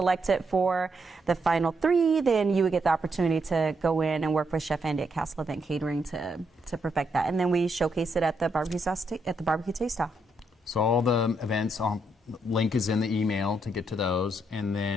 for the final 3, then you would get the opportunity to go in and work with Chef Andy at Castle Event Catering to perfect that. And then we showcase it at the barbecue taste-off. So all the events, link is in the email to get to those. And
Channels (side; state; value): both; normal; correlation 0.78